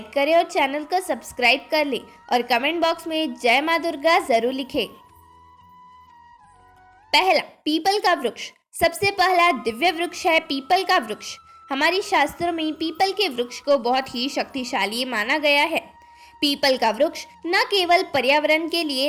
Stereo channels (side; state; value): both; identical; correlation 1.00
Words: करें और चैनल को सब्सक्राइब कर लें और कमेंट बॉक्स में जय माँ दुर्गा जरूर लिखें। पहला, पीपल का वृक्ष। सबसे पहला दिव्य वृक्ष है पीपल का वृक्ष। हमारी शास्त्रों में पीपल के वृक्ष को बहुत ही शक्तिशाली माना गया है। पीपल का वृक्ष न केवल पर्यावरण के लिए